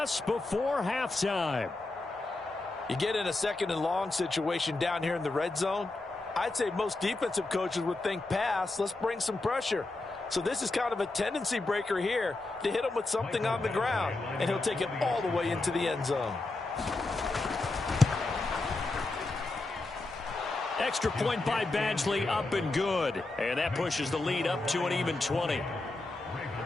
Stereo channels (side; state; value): right; quieter; 3.1 dB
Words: before halftime. You get in a second and long situation down here in the red zone. I'd say most defensive coaches would think pass. Let's bring some pressure. So this is kind of a tendency breaker here to hit him with something on the ground. And he'll take it all the way into the end zone. Extra point by Badgley, up and good. And that pushes the lead up to an even 20.